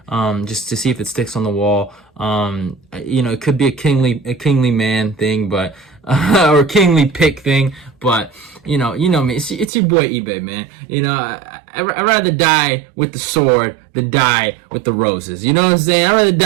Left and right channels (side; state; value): left; drops out; at 9.7 s